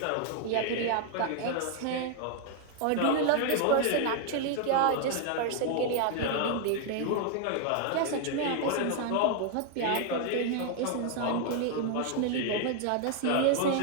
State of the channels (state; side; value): different; both; correlation 0.00